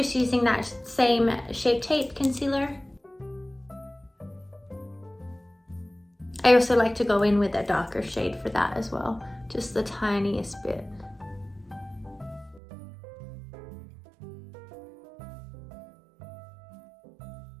using that same Shape Tape concealer. I also like to go in with a darker shade for that as well, just the tiniest bit.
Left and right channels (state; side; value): drops out; left; at 12.6 s